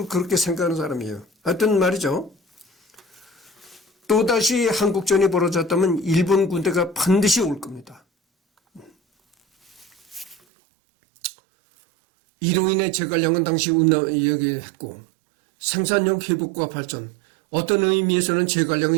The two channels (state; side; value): drops out; left; at 10.4 s